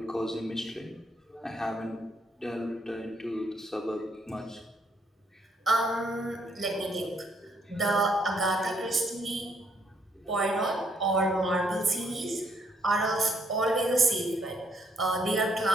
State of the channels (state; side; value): normal; both; correlation 0.71